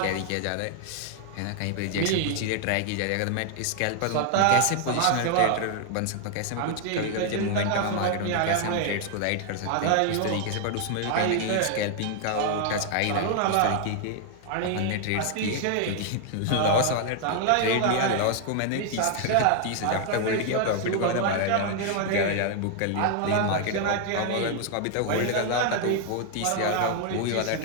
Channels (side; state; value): both; different; correlation 0.00